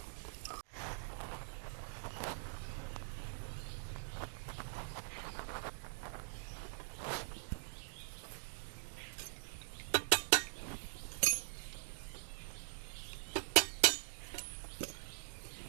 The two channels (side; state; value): left; silent; digital silence